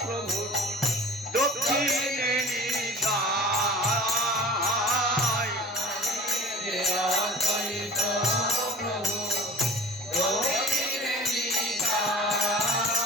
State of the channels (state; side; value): normal; both; correlation 0.39